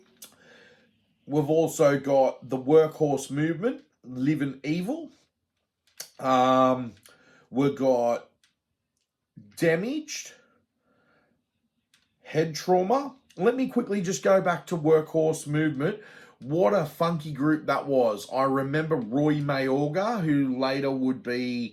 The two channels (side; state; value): both; identical; correlation 1.00